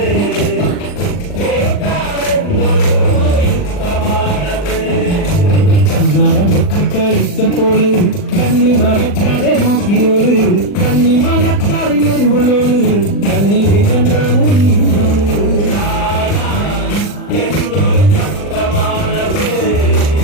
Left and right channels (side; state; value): right; late; 40 ms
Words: കളിച്ചപ്പോള് കണ്ണി മറക്കാതെ നോക്കിയോള് കണ്ണി മറക്കാറിനൊരുള്ളോള് കണ്ണീര് കണ്ടാണ് നീയോള്